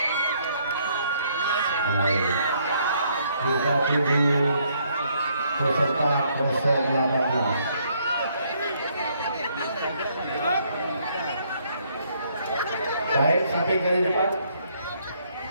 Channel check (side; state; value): both; inverted; correlation -0.69